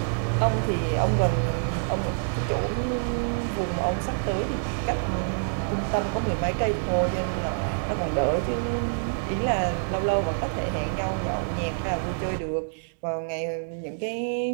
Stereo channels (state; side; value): silent; left; digital silence